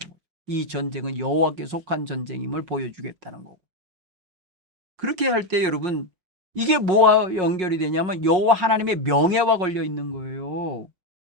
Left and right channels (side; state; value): left; late; 5.5 ms